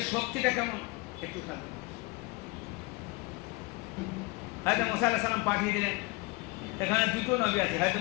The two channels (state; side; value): quieter; right; 23.8 dB